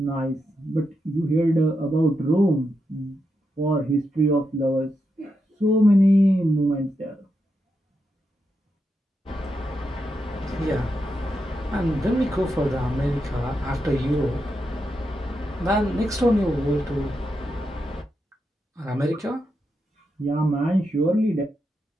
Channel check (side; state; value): both; normal; correlation 0.85